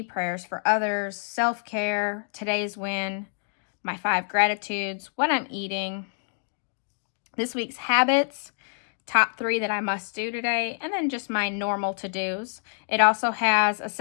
prayers for others, self-care, today's win, my 5 gratitudes, what I'm eating, this week's habits, top 3 that I must do today, and then just my normal to-dos. It also has a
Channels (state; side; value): silent; right; digital silence